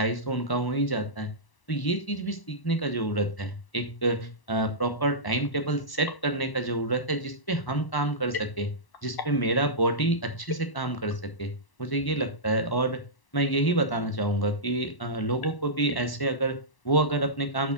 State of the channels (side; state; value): right; late; 1.0 ms